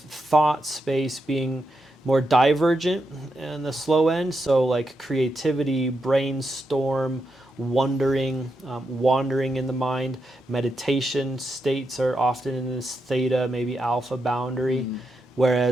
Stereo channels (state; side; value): normal; both; correlation 0.84